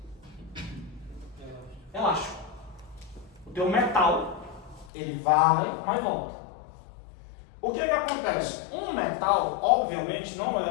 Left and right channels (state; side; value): drops out; right; at 4.9 s